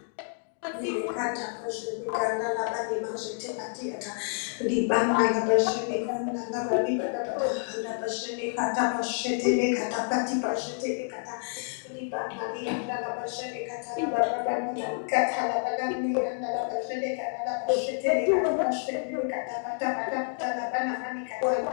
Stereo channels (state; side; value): silent; right; 59 dB below the other